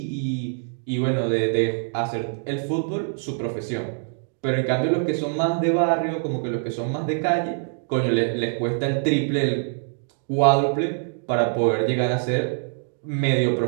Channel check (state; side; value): silent; left; digital silence